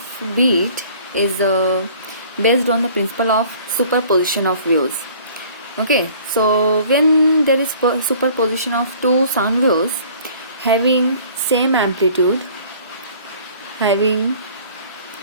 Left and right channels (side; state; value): both; inverted; correlation -0.52